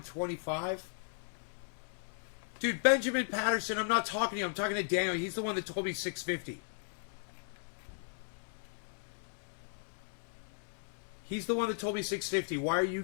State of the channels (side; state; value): right; silent; digital silence